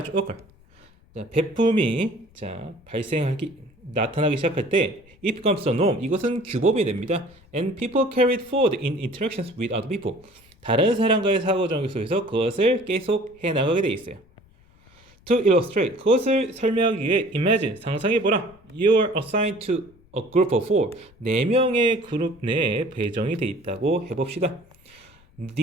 to occur, 베품이 나타나기 시작할 때 it becomes a norm, 이것은 규범이 됩니다. And people carry it forward in interactions with other people, 다른 사람과의 사고정교 속에서 그것을 계속 해나가게 돼 있어요. To illustrate, 그것을 설명하기 위해 imagine, 상상해보라. You are assigned to a group of 4, 4명의 그룹 내에 배정이 돼 있다고 해봅시다.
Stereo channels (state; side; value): noise; left; rumble, 29 dB below the sound